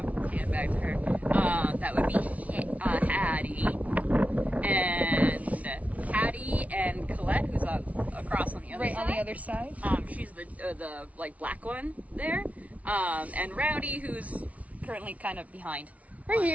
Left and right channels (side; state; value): left; late; 0.068 ms